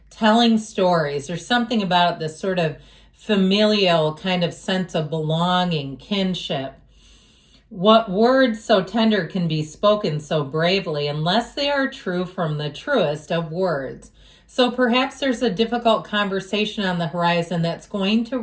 telling stories. There's something about this sort of familial kind of sense of belonging, kinship. What words so tender can be spoken so bravely unless they are true from the truest of words? So perhaps there's a difficult conversation on the horizon that's going to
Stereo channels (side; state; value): both; identical; correlation 1.00